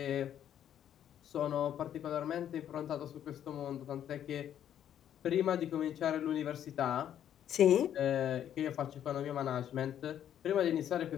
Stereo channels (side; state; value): right; quieter; 10.2 dB